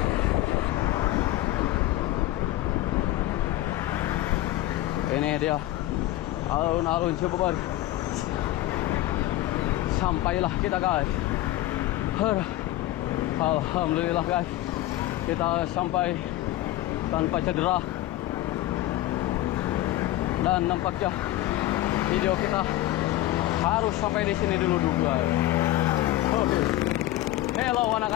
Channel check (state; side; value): quieter; right; 15.5 dB